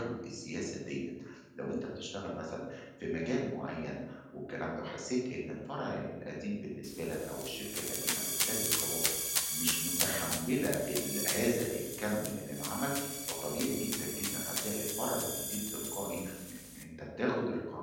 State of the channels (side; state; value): both; identical; correlation 1.00